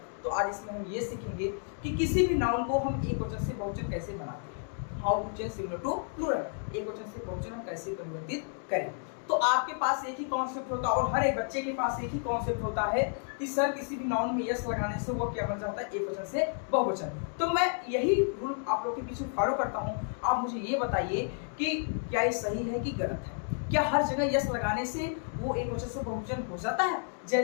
तो आज इसमें हम ये सीखेंगे कि किसी भी नाउन को हम एक वचन से बहुवचन कैसे बनाते हैं। How to change singular to plural. एक वचन से बहुवचन हम कैसे परिवर्तित करें। तो आपके पास एक ही कॉन्सेप्ट होता है और हर एक बच्चे के पास एक ही कॉन्सेप्ट होता है कि सर किसी भी नाउन में यस लगाने से वो क्या बन जाता है, एक वचन से बहुवचन। तो मैं यही रूल आप लोग के पीछे फॉलो करता हूँ। आप मुझे ये बताइए कि क्या ये सही है कि गलत है। क्या हर जगह यस लगाने से वो एक वचन से बहुवचन हो जाता है?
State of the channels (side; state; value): right; silent; 57 dB below the other